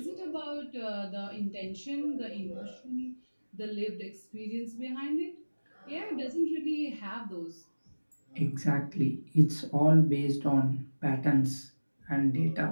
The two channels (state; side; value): inverted; both; correlation -1.00